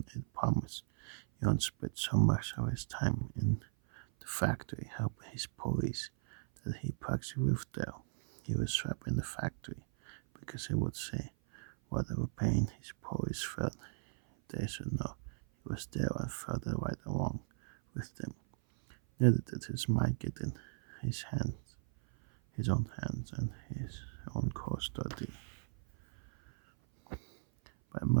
it promised. Elon spent so much of his time in the factory helping his police that he practically lived there. He was trapped in the factory because he would say whatever pain his police felt, they should know he was there and felt the right along with them. Neither did his mind get in his own hands and his own custody. But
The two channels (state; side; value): silent; left; 53 dB below the other